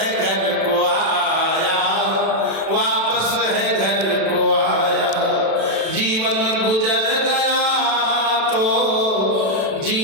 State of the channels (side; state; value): left; late; 36 ms